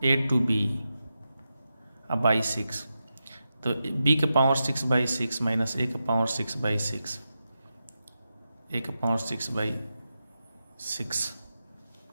a टू b बाई 6, तो b के पावर 6/6 माइनस a के पावर 6/6, a के पावर 6/6,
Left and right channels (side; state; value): both; inverted; correlation -0.90